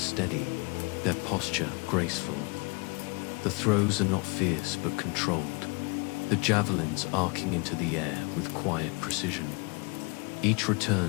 their posture graceful. The throws are not fierce but controlled, the javelins arcing into the air with quiet precision. Each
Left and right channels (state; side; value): quieter; right; 30.3 dB